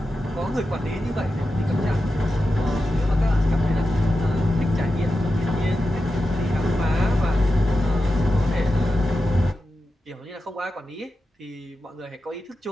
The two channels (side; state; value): both; normal; correlation 0.91